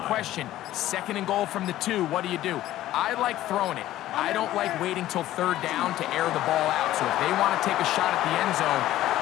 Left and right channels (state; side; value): quieter; right; 14.3 dB